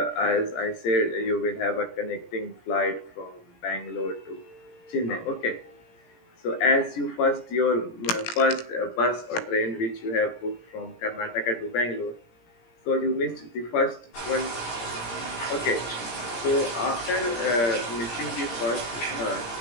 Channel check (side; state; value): right; late; 17 ms